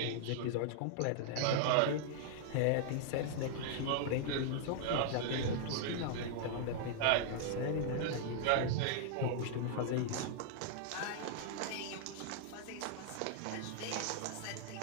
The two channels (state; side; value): different; both; correlation -0.01